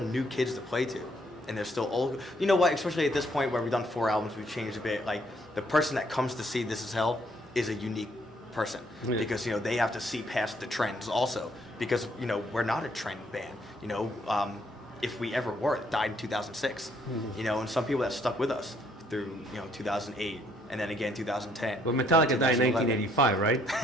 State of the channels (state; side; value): normal; both; correlation 0.68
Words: kids to play to, and there's still old. You know what? Especially at this point where we've done 4 albums, we've changed a bit. Like the person that comes to see This Is Hell is a unique person because they have to see past the trends also because we're not a trend band. If we ever were, it died in 2006. And some people that stuck with us through 2008 and then again 2010. But Metallica died in 1985, right?